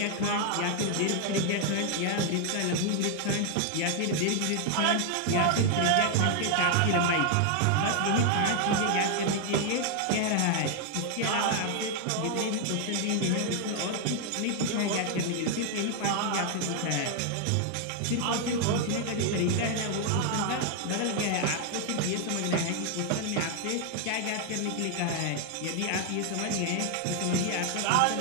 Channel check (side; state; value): both; different; correlation 0.00